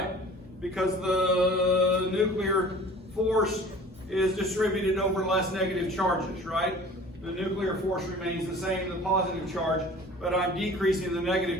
Because the nuclear force is distributed over less negative charges, right? The nuclear force remains the same, the positive charge, but I'm decreasing the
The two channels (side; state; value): both; normal; correlation 0.45